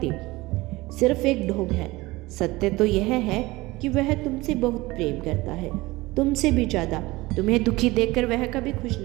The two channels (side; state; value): left; quieter; 20.7 dB